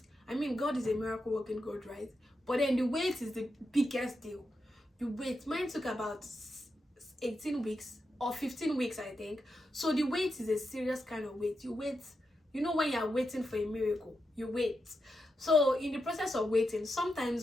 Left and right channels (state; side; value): normal; both; correlation 0.87